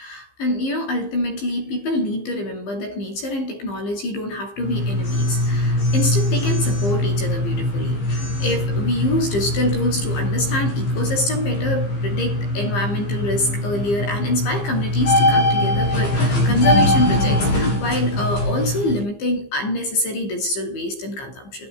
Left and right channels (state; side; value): late; right; 15 ms